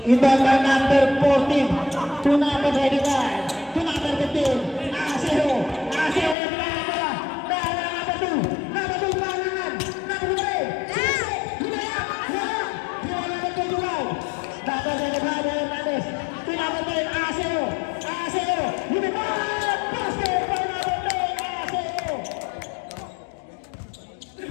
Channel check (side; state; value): right; drops out; at 6.4 s